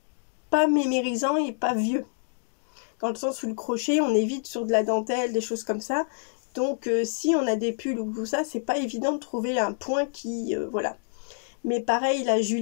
pas mémérisants et pas vieux. Dans le sens où le crochet, on évite sur de la dentelle, des choses comme ça. Donc si on a des pulls ou tout ça, c'est pas évident de trouver un point qui... voilà. Mais pareil, la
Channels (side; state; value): right; silent; digital silence